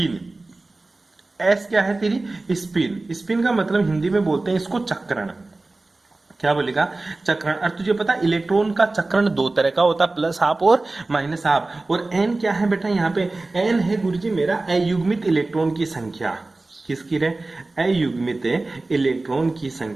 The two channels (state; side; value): quieter; left; 3.2 dB